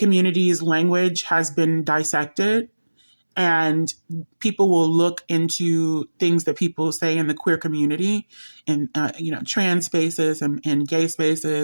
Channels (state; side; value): inverted; both; correlation -1.00